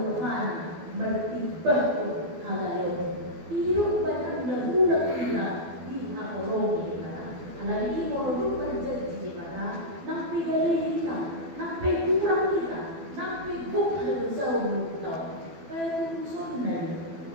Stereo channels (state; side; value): late; left; 12 ms